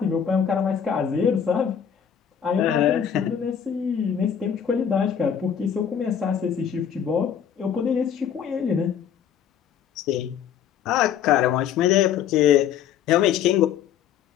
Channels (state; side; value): quieter; right; 8.5 dB